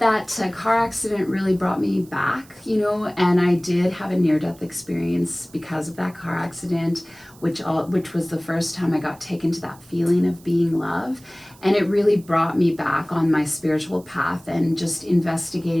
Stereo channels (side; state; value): right; noise; hiss, 25 dB below the sound